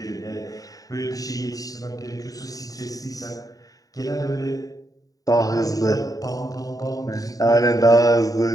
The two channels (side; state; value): right; late; 0.18 ms